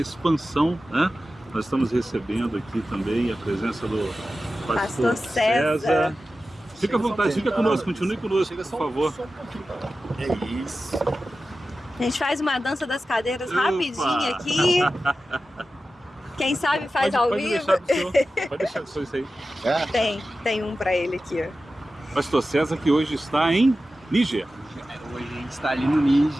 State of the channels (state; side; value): normal; both; correlation 0.94